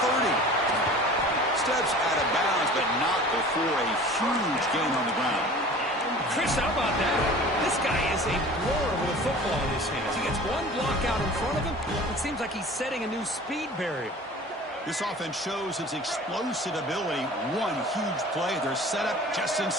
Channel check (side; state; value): both; normal; correlation 0.43